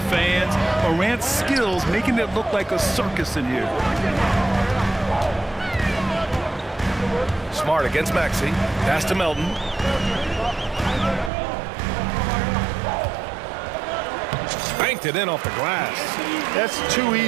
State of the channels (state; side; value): drops out; left; at 11.3 s